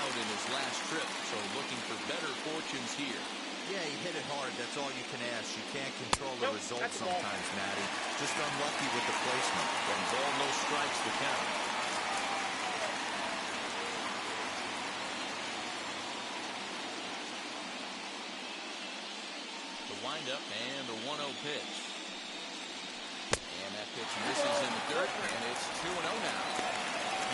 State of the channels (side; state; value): both; identical; correlation 1.00